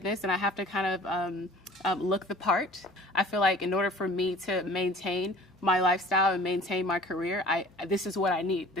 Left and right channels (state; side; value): normal; both; correlation 0.47